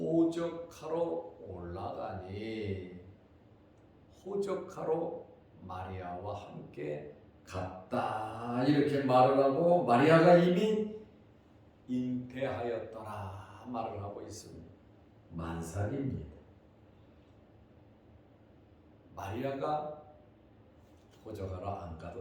올라가니 호적하러 마리아와 함께 갔다 이렇게 말을 하고 마리아가 이미 잉태하였더라 말을 하고 있습니다. 만삭입니다. 마리아가 호적하러 안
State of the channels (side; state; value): both; identical; correlation 1.00